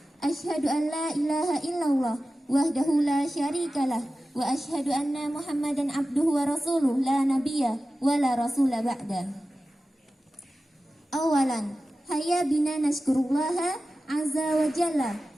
Asyhadu an la ilaha illallah wahdahu la syarikalah wa asyhadu anna Muhammadan abduhu wa rasuluh la nabiyya wa la rasula ba'da. Awalan, hayya bina nashkurullaha azza wa jalla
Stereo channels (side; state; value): both; normal; correlation 0.94